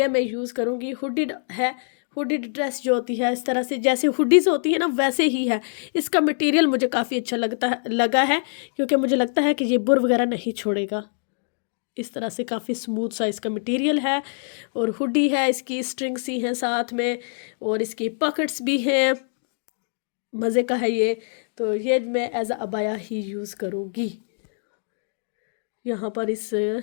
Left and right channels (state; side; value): silent; right; digital silence